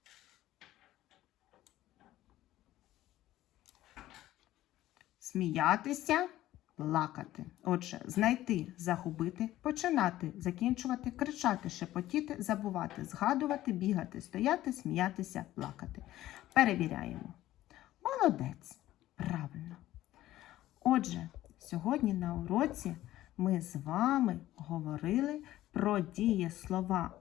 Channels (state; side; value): quieter; right; 14.7 dB